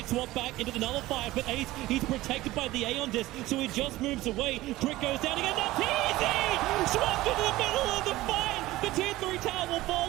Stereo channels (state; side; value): quieter; left; 17.4 dB